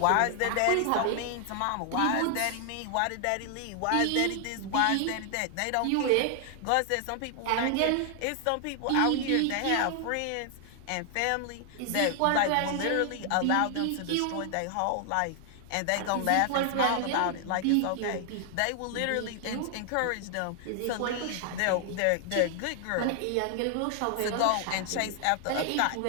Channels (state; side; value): different; both; correlation 0.00